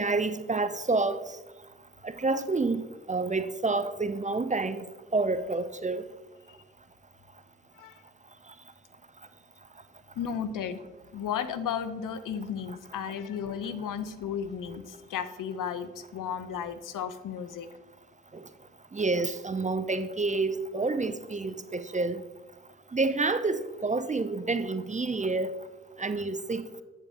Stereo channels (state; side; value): normal; both; correlation 0.39